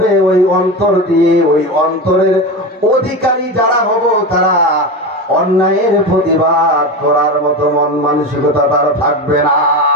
ওই অন্তর দিয়ে, ওই অন্তরের অধিকারী যারা হব, তারা অন্যায়ের প্রতিবাদ করার মতো মন মানসিকতা তার থাকবে না।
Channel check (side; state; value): both; normal; correlation 0.23